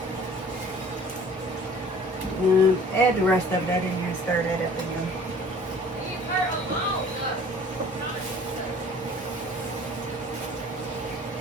Add the rest of that in here and stir that up again.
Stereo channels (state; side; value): normal; both; correlation 0.49